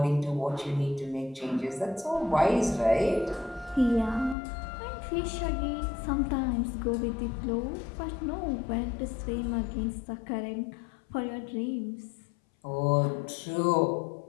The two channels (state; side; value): drops out; right; at 4.4 s